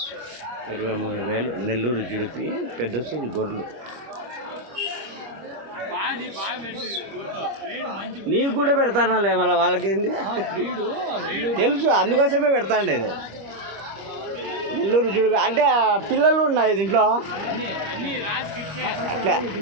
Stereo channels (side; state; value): left; late; 25 ms